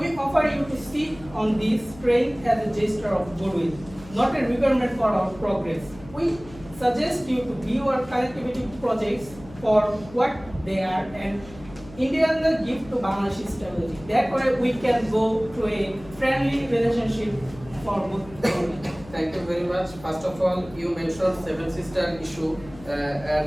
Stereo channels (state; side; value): noise; left; hum, 19 dB below the sound